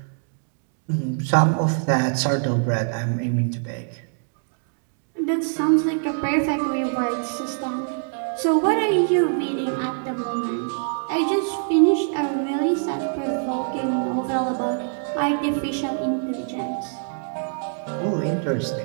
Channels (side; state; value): left; silent; digital silence